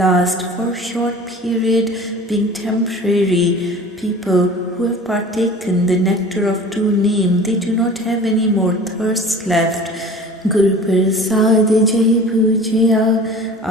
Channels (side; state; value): both; normal; correlation 0.42